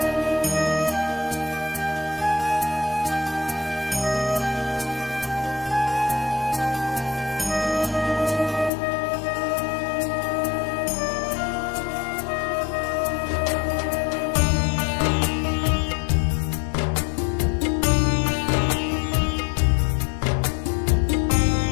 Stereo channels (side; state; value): right; drops out; at 8.7 s